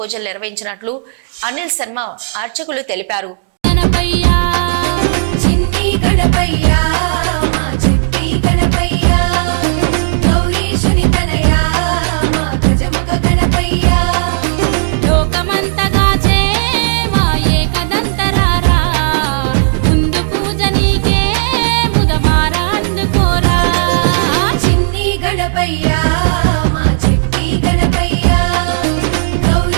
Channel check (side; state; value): left; silent; digital silence